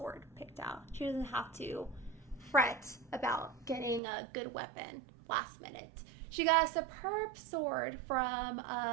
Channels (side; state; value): left; drops out; at 4.0 s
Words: picked out. She doesn't have to fret about getting a good weapon last minute. She got a superb sword from